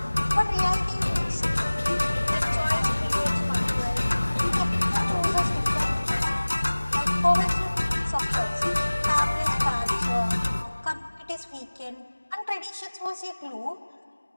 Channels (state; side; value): inverted; both; correlation -1.00